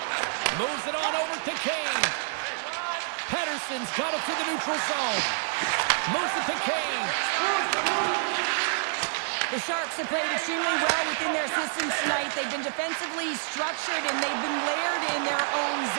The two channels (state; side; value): silent; left; digital silence